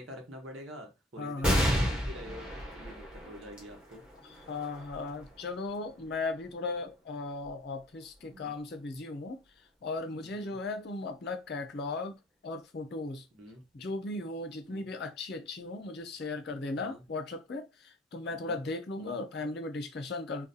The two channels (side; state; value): both; normal; correlation 0.49